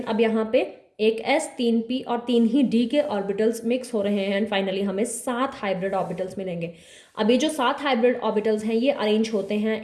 अब यहाँ पे एक S, 3 P और 3 ही D के ऑर्बिटल्स मिक्स हो रहे हैं एंड फाइनली हमें 7 हाइब्रिड ऑर्बिटल्स मिलेंगे। अब ये जो 7 हाइब्रिड ऑर्बिटल्स हैं ये अरेंज होते हैं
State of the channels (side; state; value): both; identical; correlation 1.00